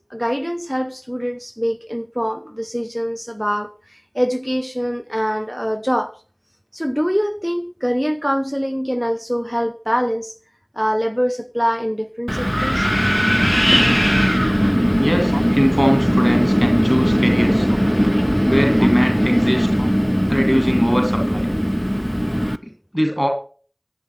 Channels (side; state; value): both; identical; correlation 1.00